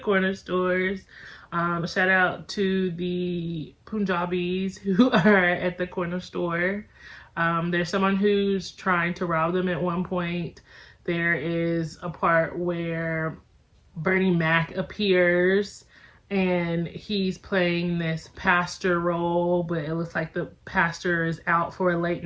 stores. Shout out to the Punjabis who are at the corner store. There's someone who's trying to rob them at one point. There is a part where Bernie Mac appears and he's playing this pastor role, but it looks like the pastor is out for a late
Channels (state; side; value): identical; both; correlation 1.00